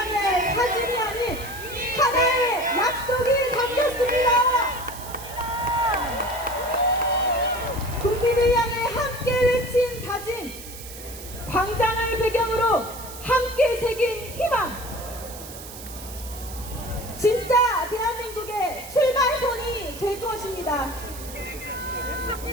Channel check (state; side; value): noise; right; hiss, 14 dB below the sound